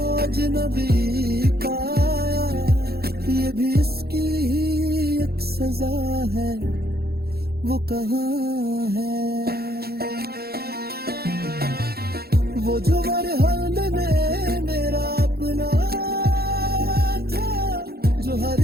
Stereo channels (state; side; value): late; left; 0.46 ms